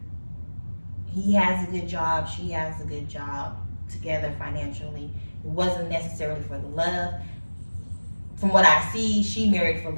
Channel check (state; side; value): inverted; both; correlation -1.00